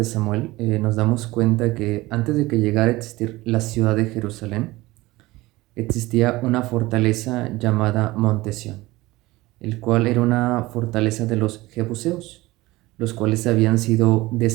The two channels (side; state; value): left; quieter; 19.6 dB